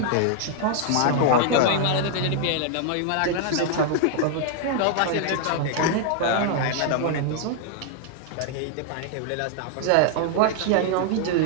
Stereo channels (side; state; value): both; different; correlation 0.00